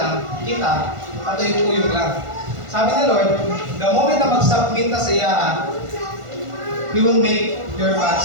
kita, patuyong-tuyong lang. Sabi ni Lord, the moment na mag-submit ka sa iya, He will make your path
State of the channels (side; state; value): left; late; 1.5 ms